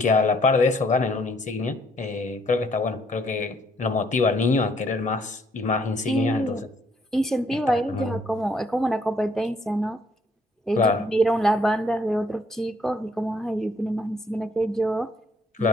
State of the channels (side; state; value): both; normal; correlation 0.67